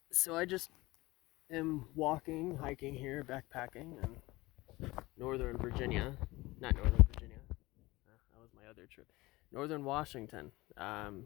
So I just am hiking here, backpacking in Northern Virginia. Not Northern Virginia. That was my other trip. Northern Washington.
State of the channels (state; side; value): quieter; right; 20.5 dB